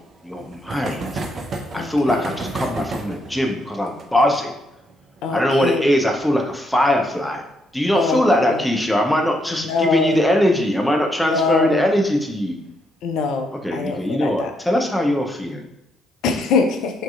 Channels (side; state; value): both; normal; correlation 0.76